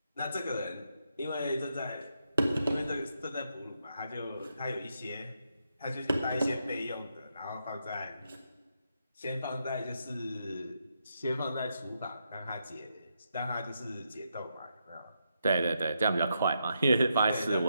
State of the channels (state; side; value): inverted; both; correlation -0.82